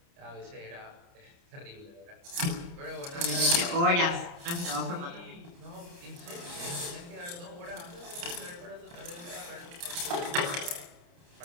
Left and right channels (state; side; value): late; left; 29 ms